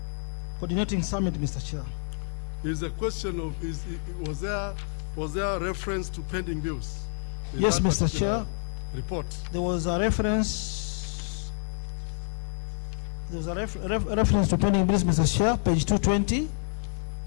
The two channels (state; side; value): silent; right; digital silence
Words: coordinating summit, Mr. Chair. Is the question of was there reference to pending bills? in Yes, that Mr. particular Chair. Report. There was a reference. There was a reference to pending bills, Mr. Chair, page 220